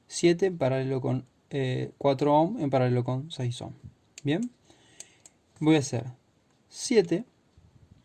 7 en paralelo con 4 ohm en paralelo con 6 ohm. Bien, voy a hacer 7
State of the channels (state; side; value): identical; both; correlation 1.00